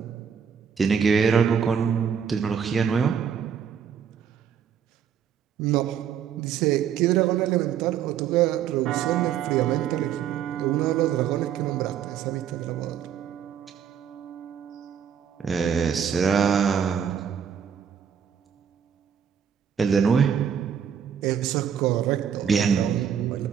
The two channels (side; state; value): left; quieter; 8.1 dB